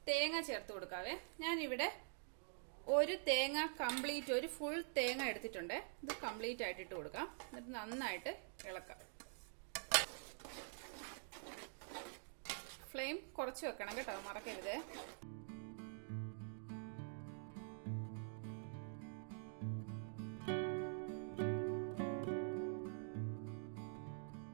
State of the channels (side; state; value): left; silent; digital silence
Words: തേങ്ങ ചേർത്ത് കൊടുക്കാവേ. ഞാനിവിടെ ഒരു തേങ്ങ കംപ്ലീറ്റ്, ഒരു ഫുൾ തേങ്ങ എടുത്തിട്ടുണ്ട്. ഇത് കംപ്ലീറ്റ് ആയിട്ട് ഇട്ട് കൊടുക്കാം. എന്നിട്ട് നന്നായിട്ട് ഇളക്കാം. ഫ്ലെയിം കുറച്ച് വെക്കണം കേട്ടോ, മറക്കരുത്.